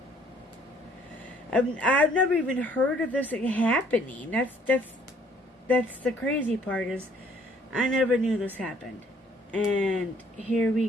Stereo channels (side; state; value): both; normal; correlation 0.60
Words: I've never even heard of this happening. That's the crazy part, is I never knew this happened. And here we